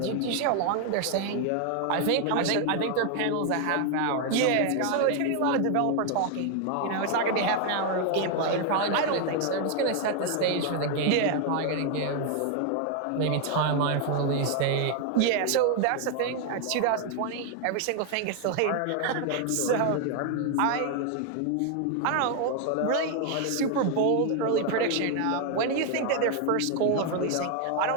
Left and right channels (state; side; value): different; both; correlation 0.01